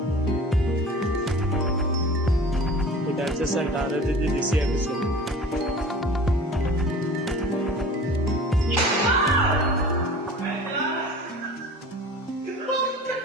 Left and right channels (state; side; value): normal; both; correlation 0.41